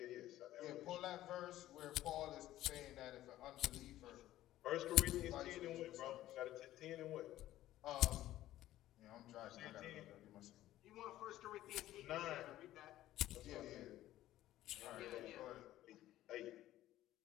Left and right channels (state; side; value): quieter; right; 14.3 dB